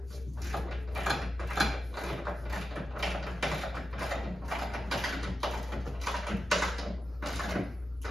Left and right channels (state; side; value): normal; both; correlation 0.91